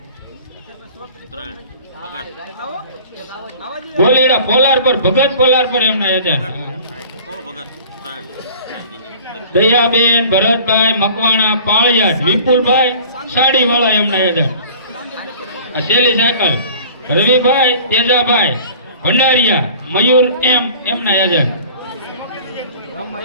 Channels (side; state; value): both; inverted; correlation -0.45